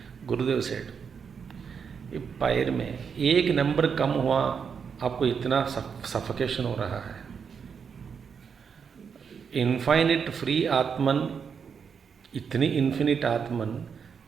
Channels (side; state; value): left; quieter; 6.5 dB